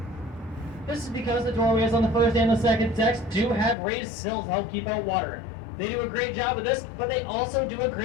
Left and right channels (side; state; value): right; drops out; at 3.8 s